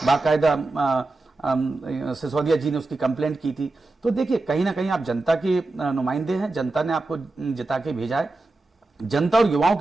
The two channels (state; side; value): quieter; left; 3.1 dB